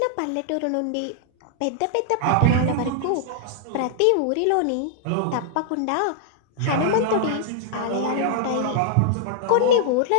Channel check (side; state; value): both; different; correlation -0.01